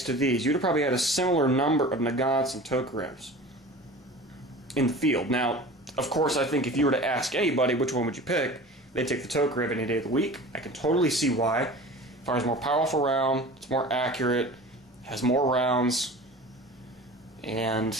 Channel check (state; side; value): normal; both; correlation 0.38